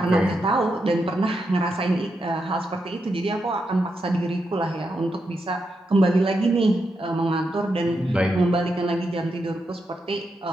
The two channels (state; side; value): normal; both; correlation 0.84